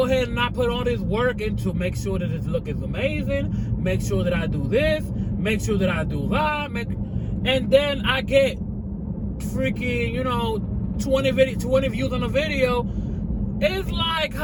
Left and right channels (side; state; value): both; identical; correlation 1.00